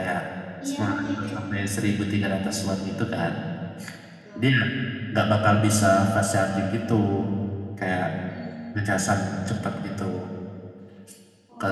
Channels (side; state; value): both; identical; correlation 1.00